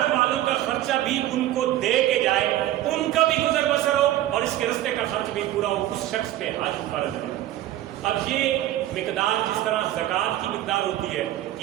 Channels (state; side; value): quieter; left; 14.0 dB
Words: والوں کا خرچہ بھی ان کو دے کے جائے، ان کا بھی گزر بسر ہو اور اس کے رستے کا خرچ بھی پورا ہو، اس شخص پہ حج فرض ہے۔ اب یہ مقدار جس طرح زکوٰۃ کی مقدار ہوتی ہے کہ